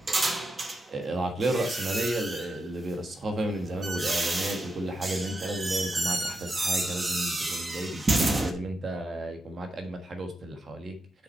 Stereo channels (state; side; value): normal; both; correlation 0.86